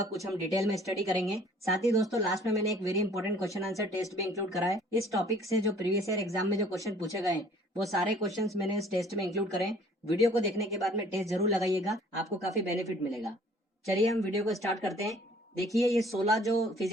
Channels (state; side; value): normal; both; correlation 0.54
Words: कुछ हम डिटेल में स्टडी करेंगे। साथ ही दोस्तों लास्ट में मैंने एक very important question answer test भी इंक्लूड करा है। इस टॉपिक से जो प्रीवियस ईयर एग्जाम में जो क्वेश्चन पूछे गए वो सारे क्वेश्चन मैंने इस टेस्ट में इंक्लूड करें। वीडियो को देखने के बाद में टेस्ट जरूर लगाइएगा, आपको काफी बेनिफिट मिलेगा। चलिए हम वीडियो को स्टार्ट करते हैं। देखिए ये 16 जो